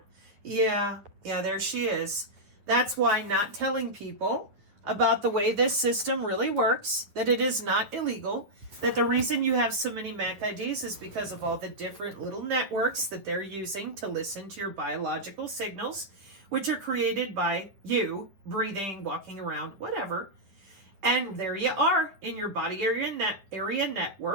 Yeah, there she is. That's why not telling people about the way this system really works, that it is not illegal, that the reason you have so many MAC IDs is because of all the different little networks that they're using to listen to your biological signals, which are created by you breathing, walking around, whatever. And there you are in your body area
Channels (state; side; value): late; left; 9.9 ms